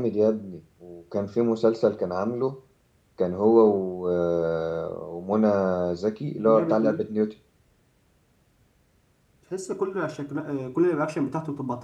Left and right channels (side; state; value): both; identical; correlation 1.00